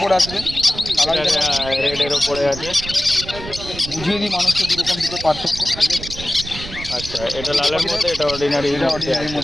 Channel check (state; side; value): noise; right; rumble, 11 dB below the sound